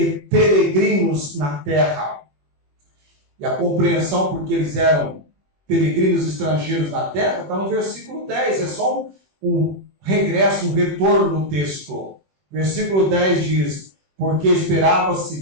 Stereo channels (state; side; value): late; left; 21 ms